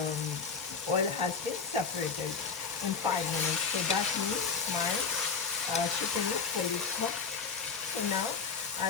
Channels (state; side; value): quieter; right; 5.4 dB